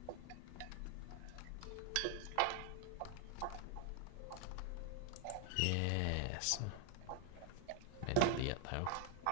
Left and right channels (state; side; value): different; both; correlation 0.00